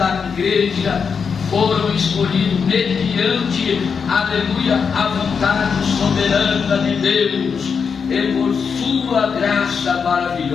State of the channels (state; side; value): quieter; right; 6.1 dB